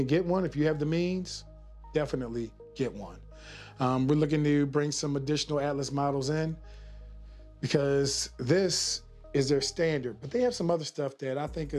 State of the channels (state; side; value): identical; both; correlation 1.00